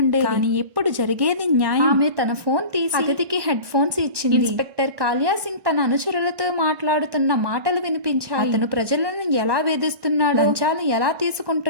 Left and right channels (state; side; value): late; left; 1.2 ms